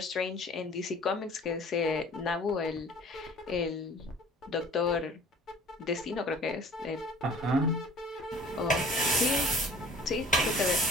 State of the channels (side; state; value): both; normal; correlation 0.49